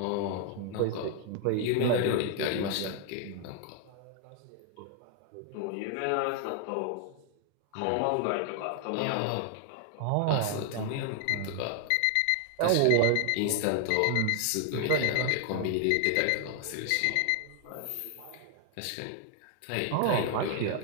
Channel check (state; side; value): different; both; correlation 0.00